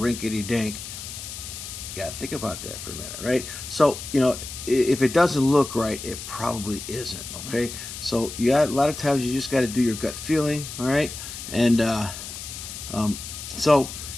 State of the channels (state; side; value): noise; left; hiss, 10 dB below the sound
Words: dink, got to think about that for a minute, right? So, if it doesn't look right, it probably isn't, okay? So, a lot of times you just got to do your gut feeling, all right? And so,